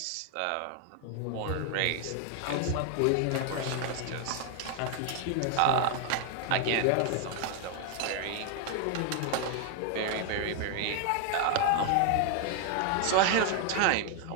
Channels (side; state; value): both; different; correlation 0.00